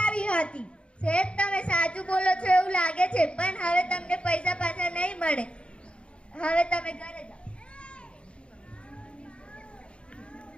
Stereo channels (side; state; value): right; late; 0.058 ms